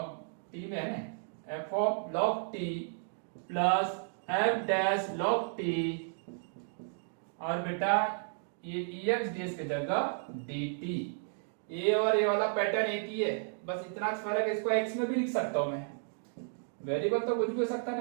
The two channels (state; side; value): silent; left; digital silence